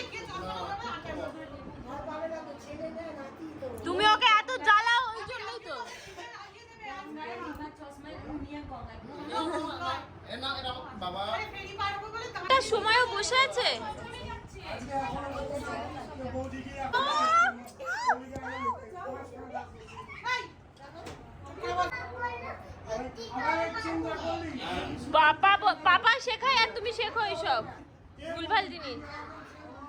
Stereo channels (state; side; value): identical; both; correlation 1.00